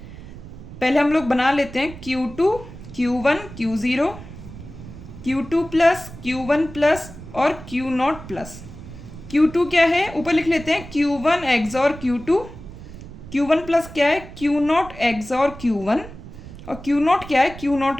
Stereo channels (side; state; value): right; noise; rumble, 15 dB below the sound